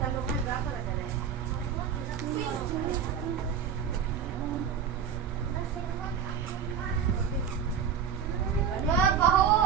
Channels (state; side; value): quieter; left; 7.4 dB